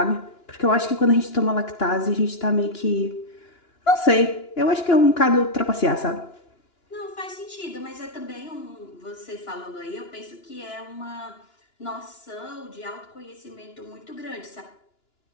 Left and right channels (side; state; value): right; late; 2.9 ms